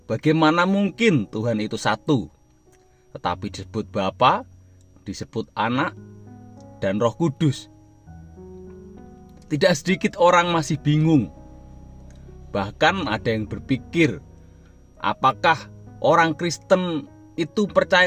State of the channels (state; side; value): identical; both; correlation 1.00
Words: Bagaimana mungkin Tuhan itu satu, tetapi disebut Bapa, disebut Anak, dan Roh Kudus? Tidak sedikit orang masih bingung. Bahkan ada yang berpikir, apakah orang Kristen itu percaya